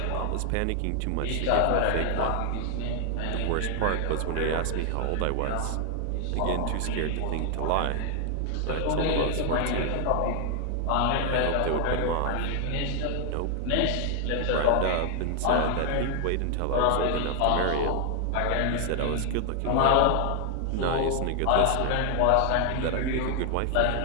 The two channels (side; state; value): both; different; correlation 0.00